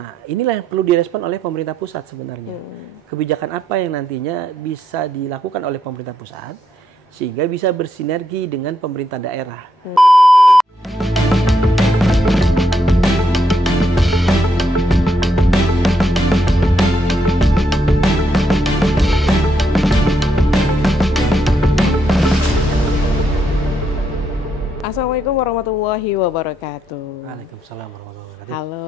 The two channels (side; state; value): both; normal; correlation 0.78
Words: inilah yang perlu direspon oleh pemerintah pusat sebenarnya. Kebijakan apa yang nantinya bisa dilakukan oleh pemerintah pusat sehingga bisa bersinergi dengan pemerintah daerah. Assalamualaikum warahmatullahi wabarakatuh. Waalaikumsalam warahmatullahi wabarakatuh.